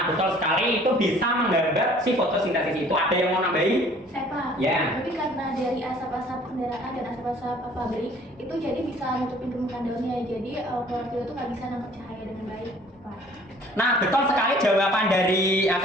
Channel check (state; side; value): normal; both; correlation 0.54